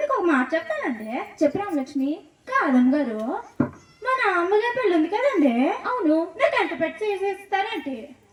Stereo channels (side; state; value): both; identical; correlation 1.00